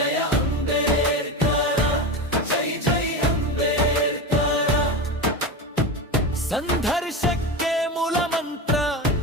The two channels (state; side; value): normal; both; correlation 0.22